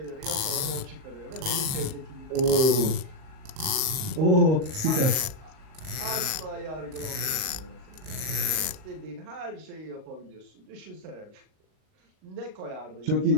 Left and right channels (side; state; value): left; late; 38 ms